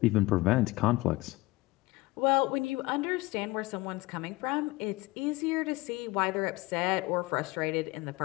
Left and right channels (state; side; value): quieter; right; 21.0 dB